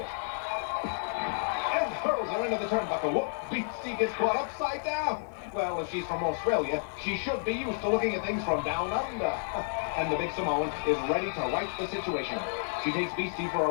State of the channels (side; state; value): right; silent; 57 dB below the other